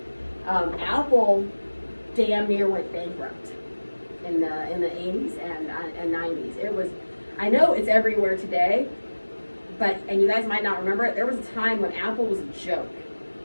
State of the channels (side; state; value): both; inverted; correlation -1.00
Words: Apple damn near went bankrupt in the 80s and 90s. It was, I know it's everywhere today, but, and you guys might not remember it, there was a time when Apple was a joke.